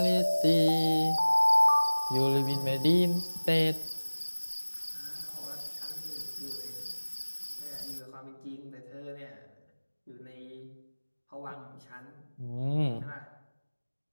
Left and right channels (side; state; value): both; inverted; correlation -1.00